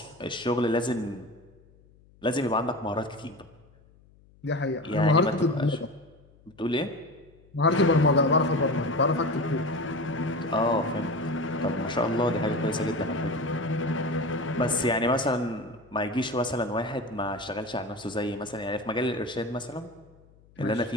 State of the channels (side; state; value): left; noise; hum, 28 dB below the sound